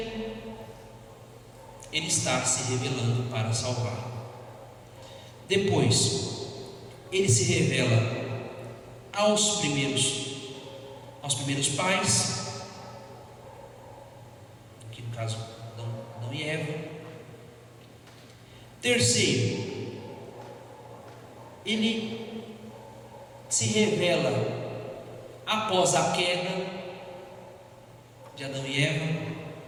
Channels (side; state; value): both; identical; correlation 1.00